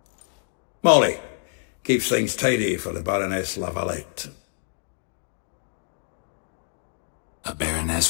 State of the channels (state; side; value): silent; right; digital silence